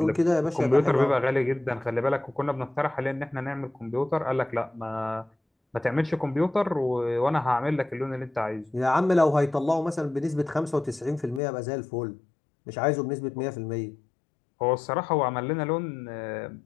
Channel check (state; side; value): drops out; right; at 11.4 s